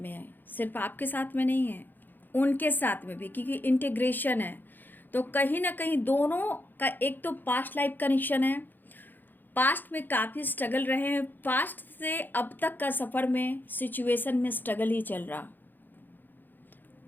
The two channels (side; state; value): right; late; 0.090 ms